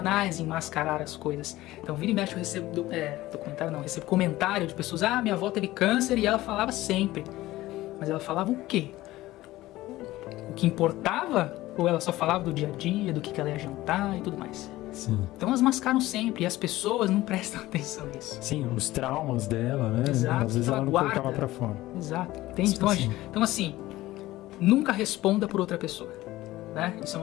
em mascarar as coisas. Então vira e mexe eu recebo recebo comentário de pessoas, minha avó teve câncer e ela falava sempre. Mas ela falava o quê? O que importava? Ou ela só falava do dia a dia, do que ela ia jantar e tudo mais? Sim. Então elas mascaram sempre e as pessoas não prestam atenção nisso. Sim, os traumas dela, né? Exato, Às vezes ela não guarda. colocava pra fora. Exato, entende? Então assim, nunca responda por outra pessoa, né? Isso é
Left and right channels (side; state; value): right; quieter; 17.0 dB